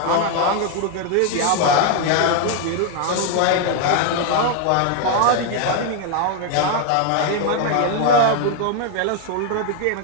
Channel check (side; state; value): both; different; correlation 0.01